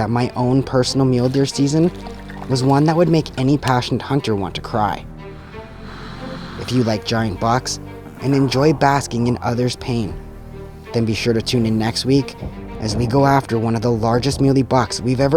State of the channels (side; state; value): both; identical; correlation 1.00